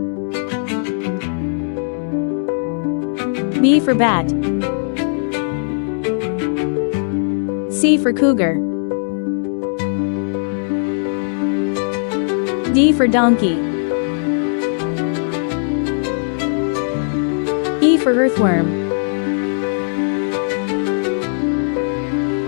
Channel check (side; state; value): right; silent; digital silence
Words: B for bat. C for cougar. D for donkey. E for earthworm.